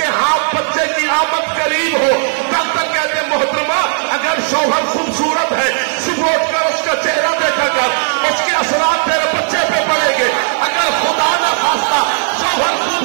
ہاتھ بچے کی آمد قریب ہو. ڈاکٹر کہتے ہیں محترمہ اگر شوہر خوبصورت ہے صبح اٹھ کر اس کا چہرہ دیکھا کر، اس کے اثرات تیرے بچے پہ پڑیں گے. اگر خدا نہ خواستہ شوہر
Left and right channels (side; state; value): left; silent; digital silence